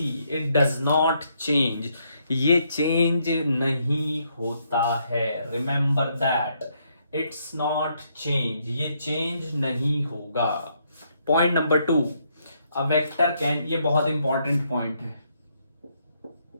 it does not change, ये चेंज नहीं होता है. Remember that, it's not change, ये चेंज नहीं होगा. Point number 2, a vector can, ये बहुत इंपॉर्टेंट पॉइंट है,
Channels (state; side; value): inverted; both; correlation -0.74